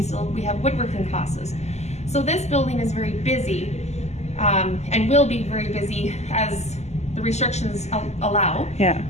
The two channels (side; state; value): right; late; 0.33 ms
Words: have woodworking classes. So this building is very busy, and will be very busy as the restrictions allow. Yeah.